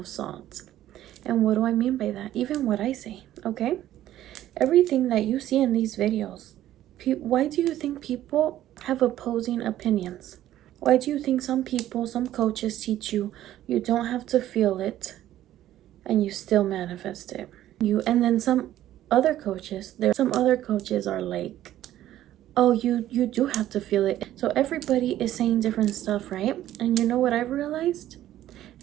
salt. And what do I mean by that? Even what I say, okay? Everything that you see in these videos, why do you think people have opposing opinions? Why do you think some people, some coaches teach you you don't have to feel it and you still manifest it? And then some other coaches, some other coaches are like, oh, you do have to feel it. So everybody is saying different stuff, right? And you know what I've realized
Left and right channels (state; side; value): quieter; left; 13.1 dB